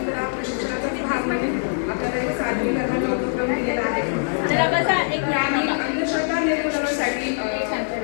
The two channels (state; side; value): silent; right; 60 dB below the other